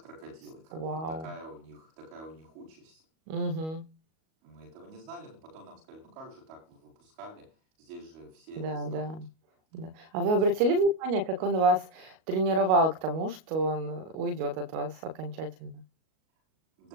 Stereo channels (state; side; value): late; left; 38 ms